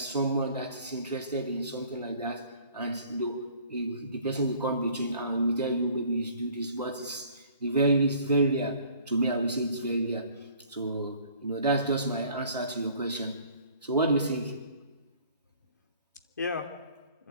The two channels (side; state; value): both; inverted; correlation -0.54